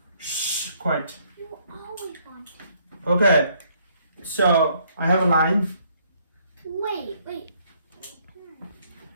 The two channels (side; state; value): both; inverted; correlation -0.67